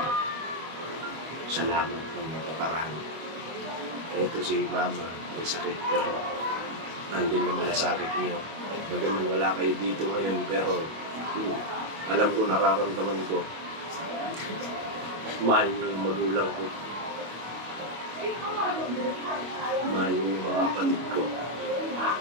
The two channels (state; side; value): late; left; 25 ms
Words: Salamat ng napakarami. Ito si mama, may sakit pero nandun yung malasakit niyo. Bagaman wala kayo dito ngayon pero alam ko, nararamdaman ko. Mahal niyo yung magulang ko. Mahal niyo yung mga kapatid ko.